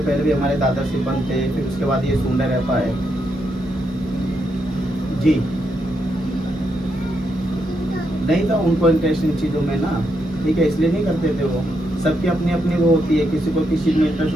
भी हमारे दादा सिपन थे, फिर उसके बाद ये सुंदर रहता है। जी नहीं था उनको इंटरेस्ट इन चीज़ों में ना, ठीक है, इसलिए नहीं करते थे वो। सबकी अपनी अपनी वो होती है, किसी को किसी में इंटरेस्ट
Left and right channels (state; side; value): normal; both; correlation 0.80